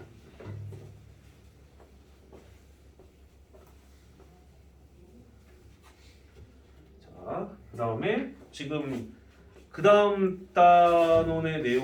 자, 그 다음에 지금 그 다음 단원의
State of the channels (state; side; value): identical; both; correlation 1.00